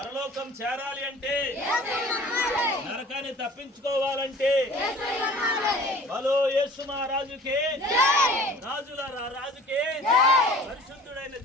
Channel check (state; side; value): normal; both; correlation 0.46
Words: చేరాలి అంటే, నరకాన్ని తప్పించుకోవాలంటే, బలో యేసు మహారాజుకే, రాజుల రాజుకే, పరిశుద్ధుడైన